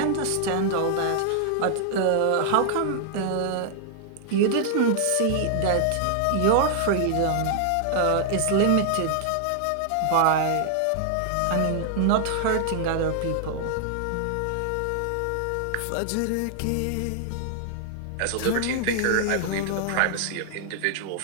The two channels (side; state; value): both; different; correlation -0.01